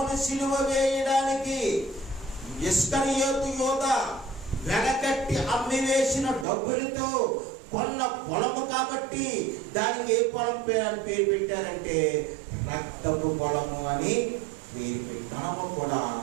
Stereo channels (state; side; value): drops out; left; at 6.5 s